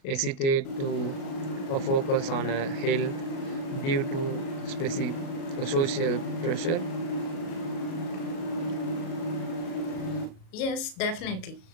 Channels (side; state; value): right; late; 37 ms